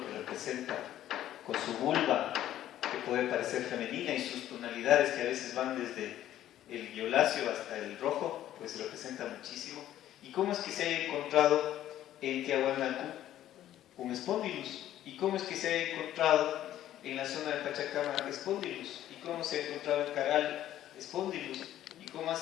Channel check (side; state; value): right; quieter; 12.5 dB